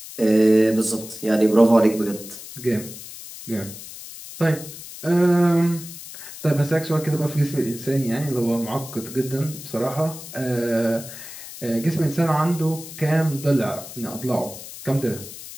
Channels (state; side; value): noise; left; hiss, 13 dB below the sound